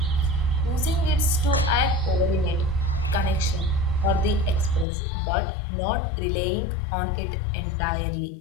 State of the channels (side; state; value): right; drops out; at 4.9 s